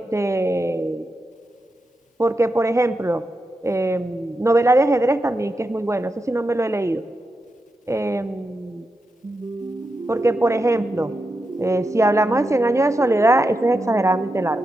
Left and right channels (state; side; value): normal; both; correlation 0.87